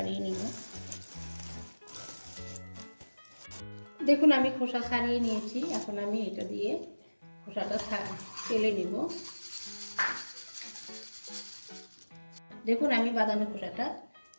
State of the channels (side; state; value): both; inverted; correlation -1.00